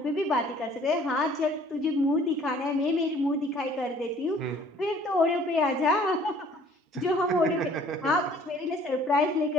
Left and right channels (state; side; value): normal; both; correlation 0.56